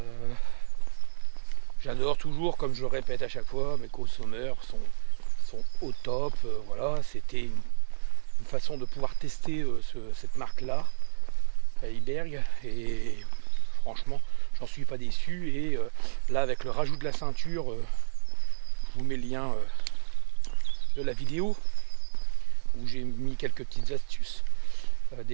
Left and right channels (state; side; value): silent; left; digital silence